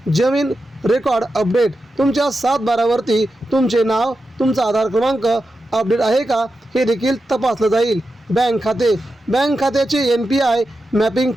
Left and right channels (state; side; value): normal; both; correlation 0.89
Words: जमीन रेकॉर्ड अपडेट, तुमच्या 7/12वरती तुमचे नाव तुमचा आधार क्रमांक अपडेट आहे का हे देखील तपासलं जाईल। बँक खात्याचे NPI मॅपिंग